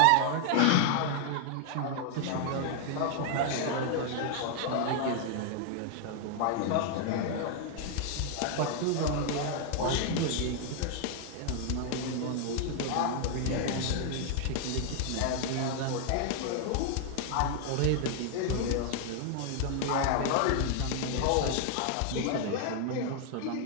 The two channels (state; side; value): different; both; correlation 0.00